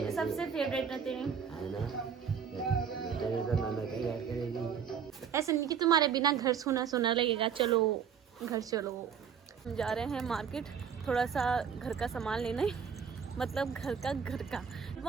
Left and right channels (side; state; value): left; quieter; 7.3 dB